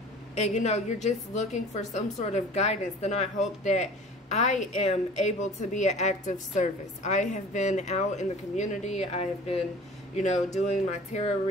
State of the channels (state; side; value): normal; both; correlation 0.44